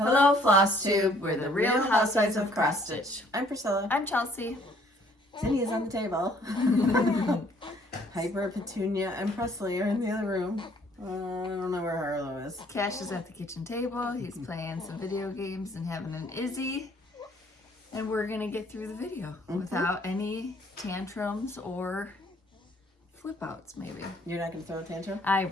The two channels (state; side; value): normal; both; correlation 0.61